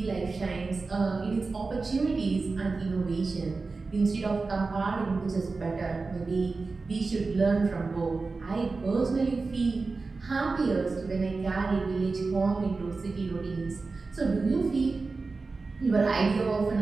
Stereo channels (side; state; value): left; quieter; 4.0 dB